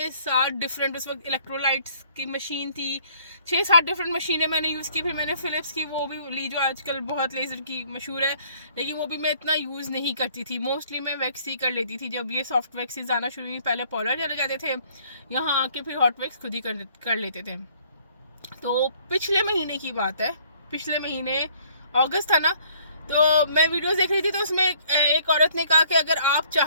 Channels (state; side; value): inverted; both; correlation -0.61